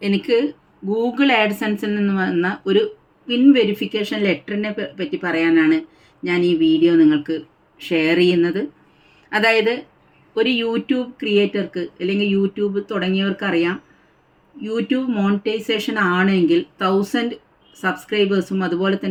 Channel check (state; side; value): identical; both; correlation 1.00